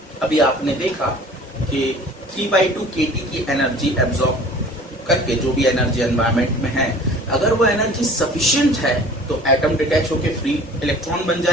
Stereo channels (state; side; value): normal; both; correlation 0.47